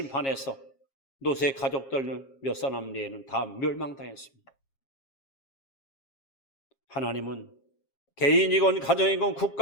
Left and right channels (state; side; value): late; right; 7.4 ms